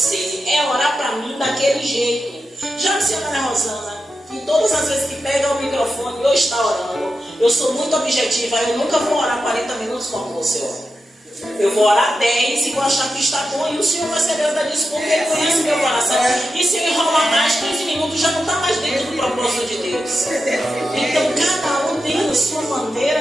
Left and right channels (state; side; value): normal; both; correlation 0.90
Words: é orar para mim daquele jeito. Já a senhora Rosana, que todas as vezes que pega o microfone eu está orando, eu sou muito objetiva, eu nunca vou orar 40 minutos como você ora. Eu vou orar 10 e vou achar que está bom, e o Senhor vai saber da disso porque Ele conhece meu coração. E se eu enrolar mais 15 minutos, já não está mais dentro do propósito de Deus. Então cada um tem a sua